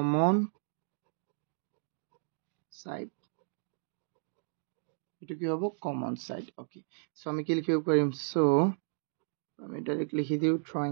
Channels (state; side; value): silent; left; digital silence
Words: সাইড এটো কি হ'ব কমন সাইড ওকে সো আমি কি লিখিব পাৰিম সো আমি ডাইরেক্ট লিখি দিও